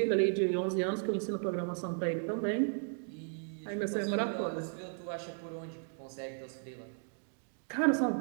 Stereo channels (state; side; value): silent; left; digital silence